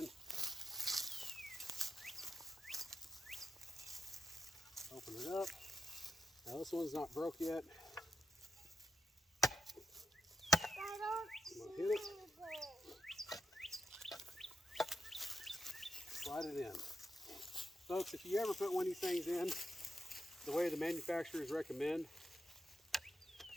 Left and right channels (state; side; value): normal; both; correlation 0.86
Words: Open it up. Now this one's not broke yet. I'm gonna hit it. Slide it in. Folks, if you ever put one of these things in the way the manufacturers recommend,